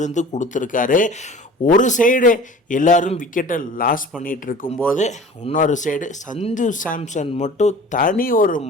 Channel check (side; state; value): both; normal; correlation 0.42